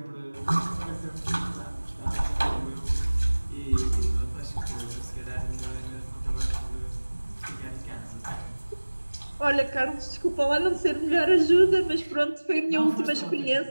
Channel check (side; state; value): both; inverted; correlation -1.00